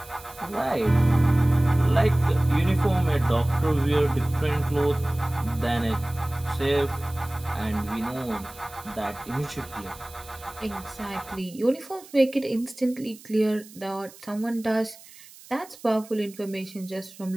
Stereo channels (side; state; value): right; noise; hiss, 21 dB below the sound